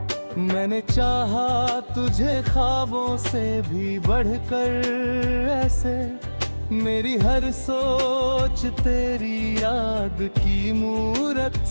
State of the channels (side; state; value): both; inverted; correlation -1.00